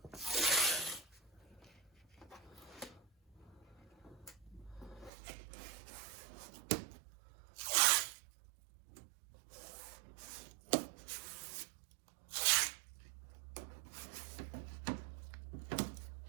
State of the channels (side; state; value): left; drops out; at 5.1 s